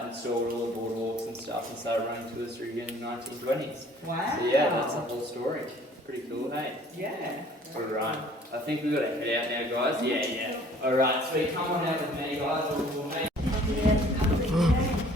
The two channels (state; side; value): normal; both; correlation 0.54